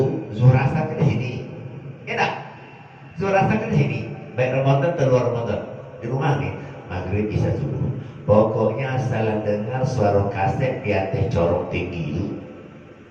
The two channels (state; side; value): identical; both; correlation 1.00